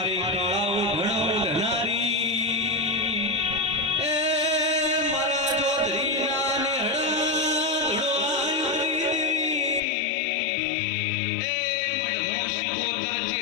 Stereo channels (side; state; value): right; drops out; at 9.8 s